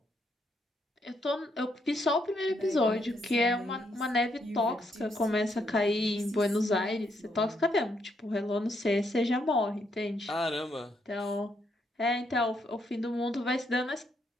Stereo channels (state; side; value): normal; both; correlation 0.76